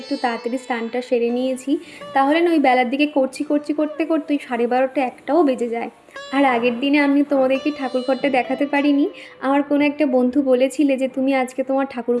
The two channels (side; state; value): both; identical; correlation 1.00